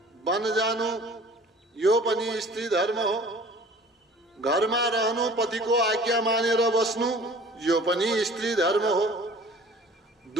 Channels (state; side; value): normal; both; correlation 0.47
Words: वन जानु यो पनि स्त्री धर्म हो। घरमा रहनु, पतिको आज्ञा मानेर बस्नु यो पनि स्त्री धर्म हो।